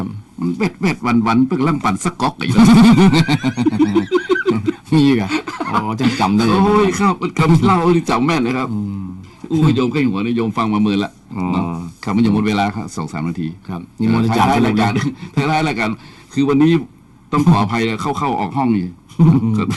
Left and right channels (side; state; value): both; identical; correlation 1.00